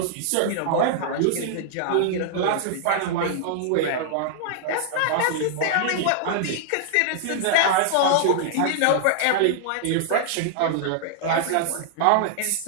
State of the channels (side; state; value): both; different; correlation -0.01